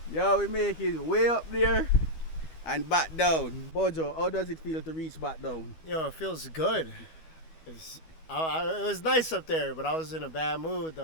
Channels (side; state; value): right; late; 12 ms